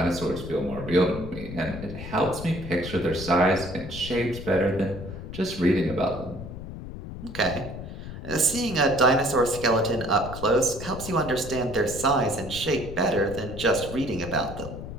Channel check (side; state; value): left; noise; rumble, 10 dB below the sound